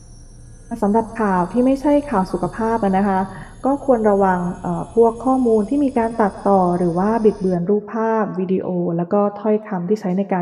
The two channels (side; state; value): both; identical; correlation 1.00